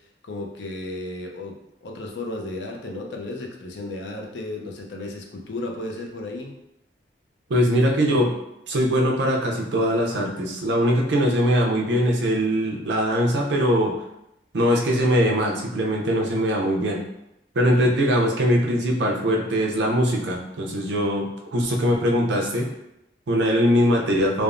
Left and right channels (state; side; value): normal; both; correlation 0.55